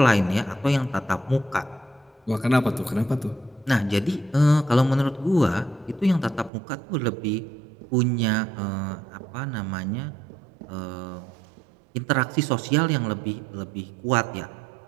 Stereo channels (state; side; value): drops out; left; at 6.5 s